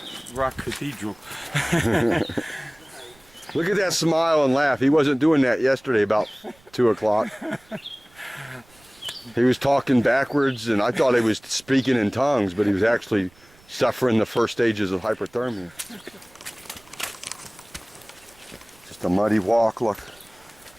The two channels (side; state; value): right; noise; rumble, 29 dB below the sound